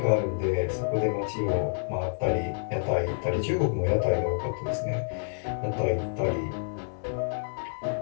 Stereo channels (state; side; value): silent; right; 59 dB below the other